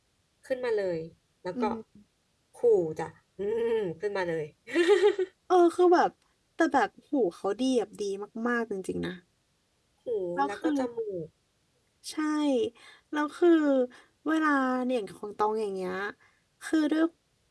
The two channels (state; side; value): identical; both; correlation 1.00